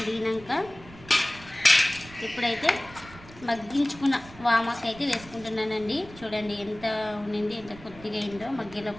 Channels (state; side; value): noise; right; rumble, 19 dB below the sound